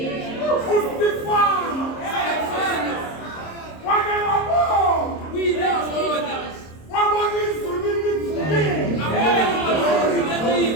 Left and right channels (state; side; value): late; right; 26 ms